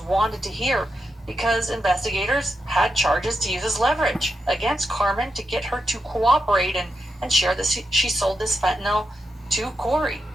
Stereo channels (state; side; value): normal; both; correlation 0.86